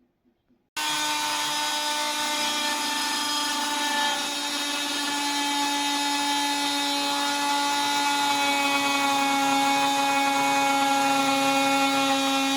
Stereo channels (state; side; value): identical; both; correlation 1.00